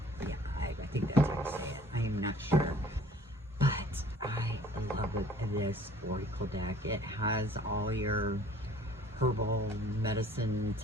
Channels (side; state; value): both; normal; correlation 0.53